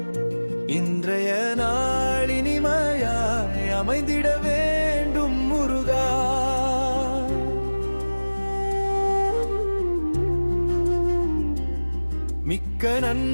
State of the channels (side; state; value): both; inverted; correlation -1.00